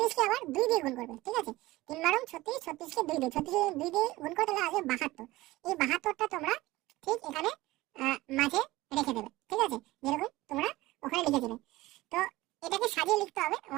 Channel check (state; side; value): quieter; left; 18.6 dB